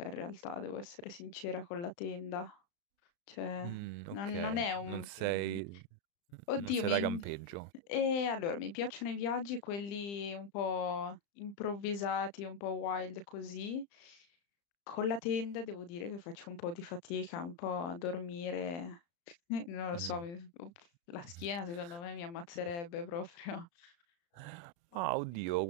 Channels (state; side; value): late; right; 34 ms